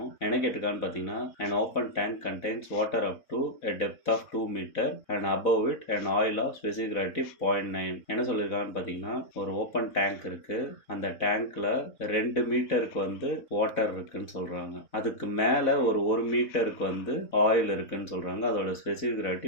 என்ன கேட்டிருக்கான்னு பார்த்தீங்கன்னா, an open tank contains water up to a depth of 2 meter and above it an oil of specific gravity 0.9. என்ன சொல்லியிருக்காங்கன்னு பார்த்தீங்கன்னா, ஒரு ஓப்பன் டேங்க் இருக்கு. அந்த டேங்க்ல 2 மீட்டருக்கு வாட்டர் இருக்குன்னு சொல்றாங்க. அதுக்கு மேல ஒரு 1 மீட்டருக்கு ஆயில் இருக்குன்னு சொல்றாங்க. அதோட ஸ்பெசிபிக்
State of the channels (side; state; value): right; late; 4.0 ms